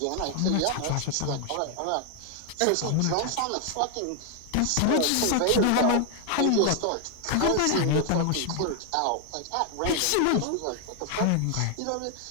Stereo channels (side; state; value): both; different; correlation 0.00